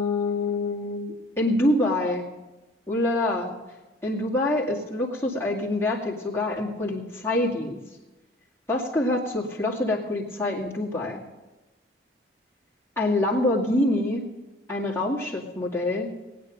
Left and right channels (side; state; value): both; normal; correlation 0.50